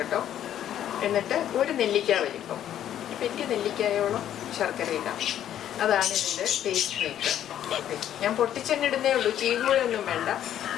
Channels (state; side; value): quieter; right; 10.9 dB